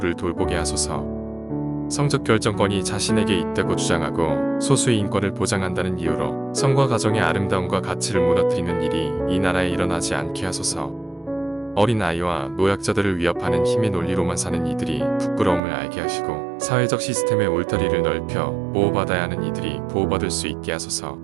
돌보게 하소서. 성적 결정권이 자신에게 있다고 주장하고 소수의 인권을 보장한다는 이유로 성과 가정의 아름다움과 가치를 무너뜨리는 일이 이 나라에 일어나지 않게 하소서. 어린 아이와 노약자들을 위협하는 힘의 논리로만 사는 이들이 부끄러움을 알게 하시고 사회적 시스템의 울타리를 넓혀 보호받아야 하는 이들이 보호받을 수 있게 하소서.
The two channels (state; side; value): drops out; left; at 15.6 s